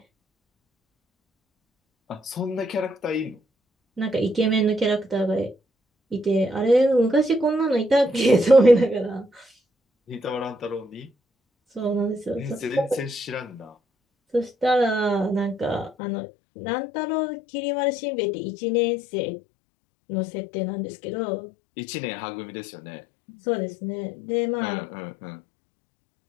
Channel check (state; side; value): drops out; right; at 15.9 s